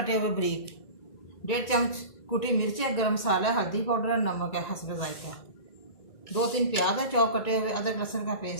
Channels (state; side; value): late; right; 1.9 ms